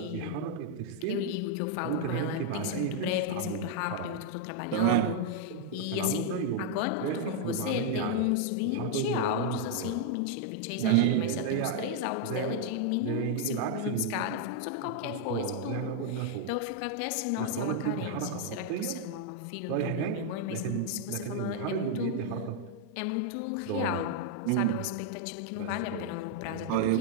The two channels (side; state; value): both; different; correlation 0.00